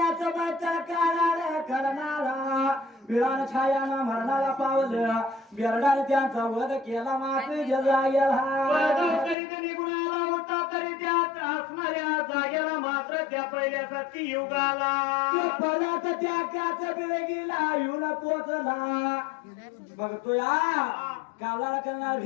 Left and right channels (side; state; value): right; drops out; at 9.3 s